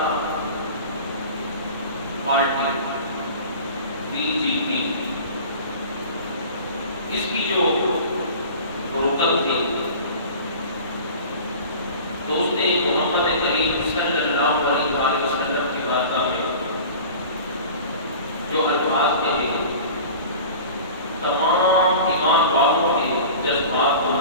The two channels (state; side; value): inverted; both; correlation -0.40